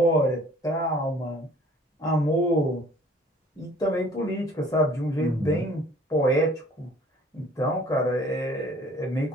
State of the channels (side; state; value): both; normal; correlation 0.54